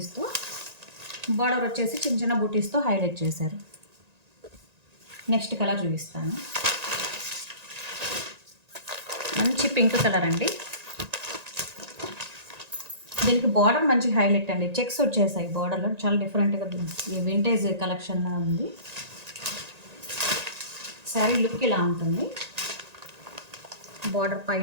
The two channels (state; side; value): late; left; 1.9 ms